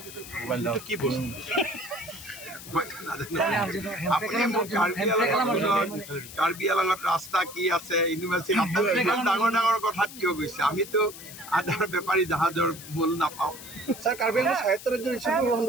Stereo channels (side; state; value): left; noise; hiss, 14 dB below the sound